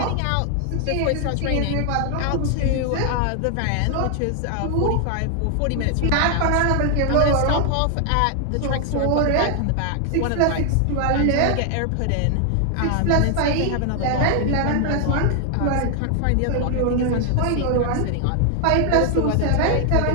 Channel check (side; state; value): both; different; correlation 0.00